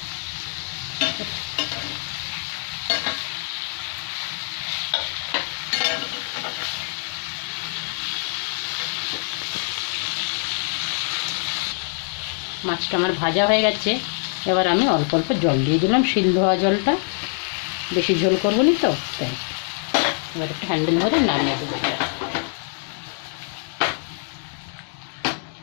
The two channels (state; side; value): silent; right; 55 dB below the other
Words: মাছটা আমার ভাজা হয়ে গেছে, এবার আমি অল্প অল্প জল দিয়ে দিলাম, শিল ধোয়া জলটা। বেশি ঝোল করবো না তো, তাই। এবার একটু হ্যান্ডেল ধরে নামিয়ে দেবো।